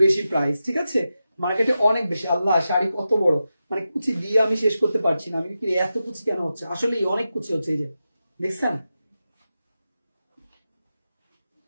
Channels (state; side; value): inverted; both; correlation -0.91